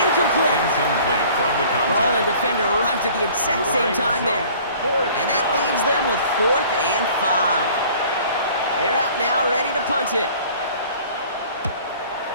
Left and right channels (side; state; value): both; inverted; correlation -0.50